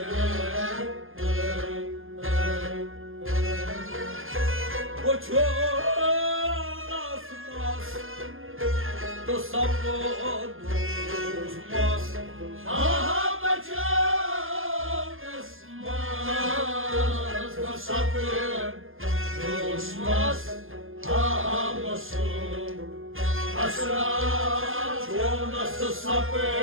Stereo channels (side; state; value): left; late; 0.59 ms